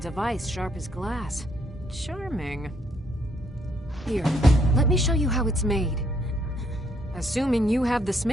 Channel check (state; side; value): normal; both; correlation 0.70